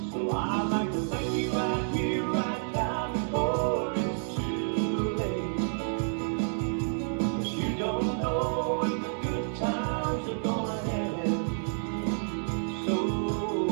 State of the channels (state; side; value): silent; left; digital silence